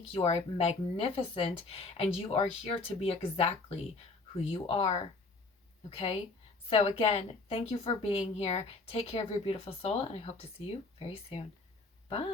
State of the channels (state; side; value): quieter; right; 3.6 dB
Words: You are magnificent. And you are here to be exactly who you are. Okay? So again, thank you for being here. Take care of your beautiful soul, and I hope to see you very soon.